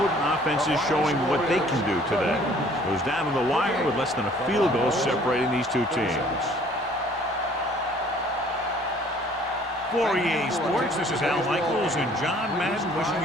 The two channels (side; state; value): both; normal; correlation 0.56